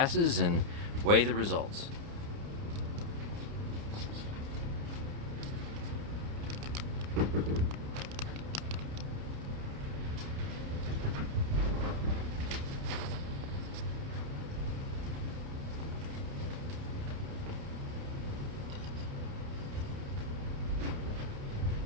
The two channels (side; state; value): left; late; 30 ms